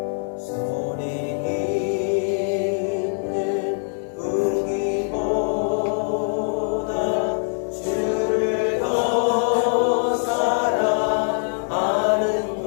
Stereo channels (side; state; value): right; silent; 63 dB below the other